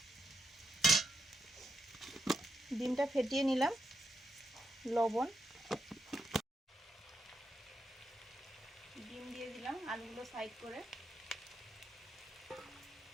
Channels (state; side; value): normal; both; correlation 0.82